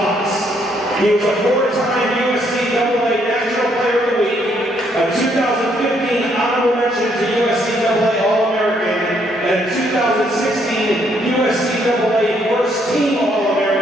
He was a 4-time USCAA National Player of the Week, a 2015 honorable mention to USCAA All-American, and a 2016 USCAA First Team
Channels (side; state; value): both; normal; correlation 0.71